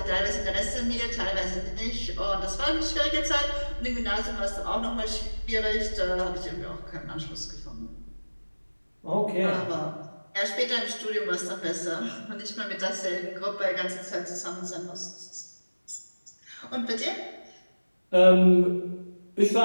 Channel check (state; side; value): inverted; both; correlation -1.00